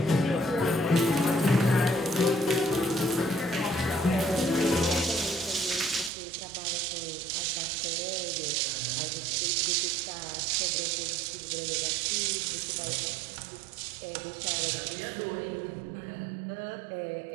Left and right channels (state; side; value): drops out; left; at 6.1 s